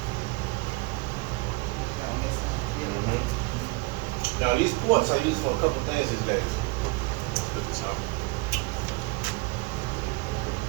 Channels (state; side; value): quieter; left; 25.2 dB